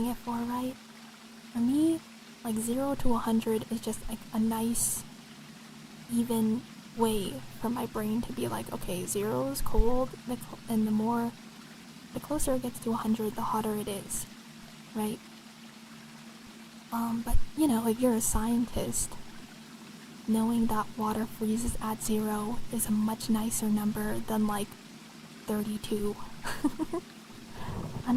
it for, right? For me, like 0 to 100 is just like a nice, even way for my brain to be like, okay, 0 is cold, and the closer it gets to 100, the hotter it is, right? But you know, if you're a scientist, knowing that water freezes at 0 is a much nicer number than like 32.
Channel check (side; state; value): both; identical; correlation 1.00